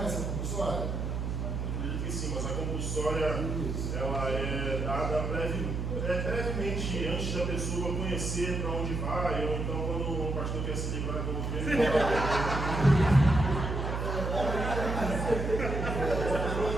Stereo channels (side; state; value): right; noise; hum, 2 dB below the sound